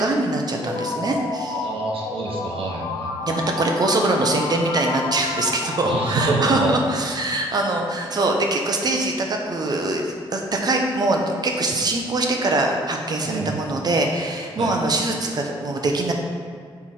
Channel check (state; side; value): normal; both; correlation 0.51